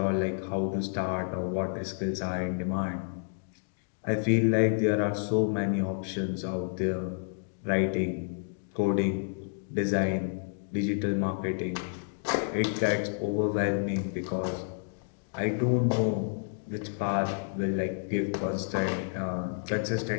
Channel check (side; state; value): right; silent; digital silence